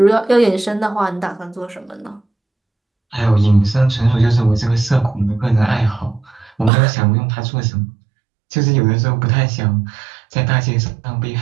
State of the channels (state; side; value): drops out; left; at 6.7 s